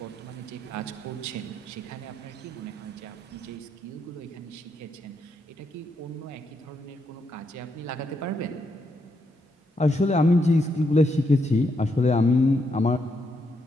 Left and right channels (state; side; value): normal; both; correlation 0.79